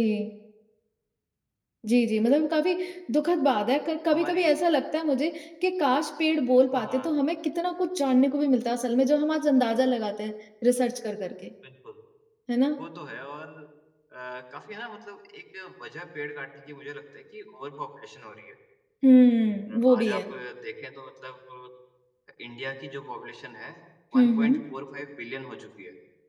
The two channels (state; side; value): identical; both; correlation 1.00